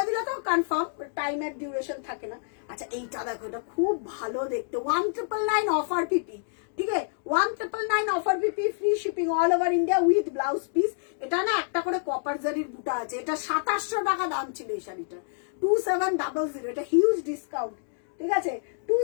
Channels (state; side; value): silent; right; digital silence